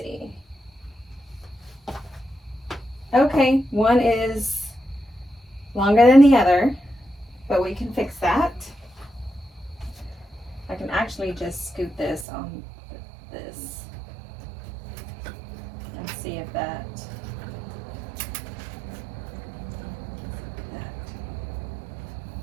Okay, one is longer than the other, but we can fix that. I can actually just scoot this on this and see if that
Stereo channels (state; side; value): drops out; left; at 12.2 s